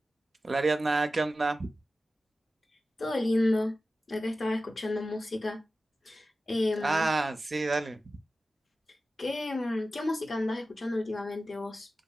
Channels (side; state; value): both; normal; correlation 0.94